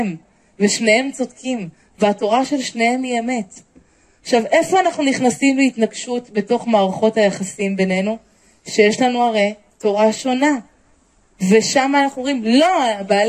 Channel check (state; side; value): identical; both; correlation 1.00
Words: ושניהם צודקים, והתורה של שניהם היא אמת. עכשיו, איפה אנחנו נכנסים להתנגשות בתוך מערכות היחסים בינינו? שיש לנו הרי תורה שונה. ושם אנחנו אומרים, לא,